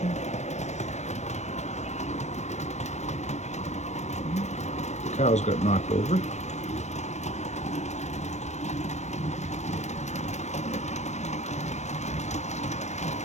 The cows got knocked over.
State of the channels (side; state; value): right; late; 0.33 ms